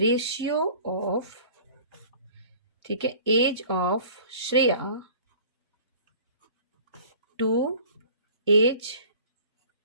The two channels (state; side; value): inverted; both; correlation -0.46